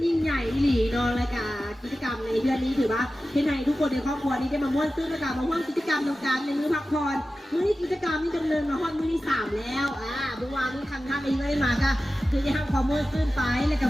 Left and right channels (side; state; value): both; normal; correlation 0.94